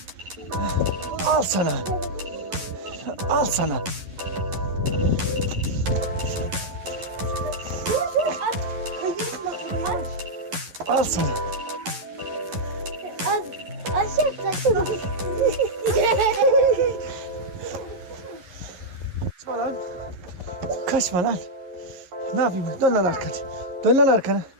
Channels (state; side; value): late; left; 11 ms